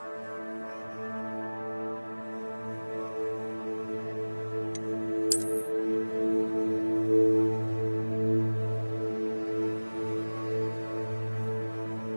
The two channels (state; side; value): inverted; both; correlation -1.00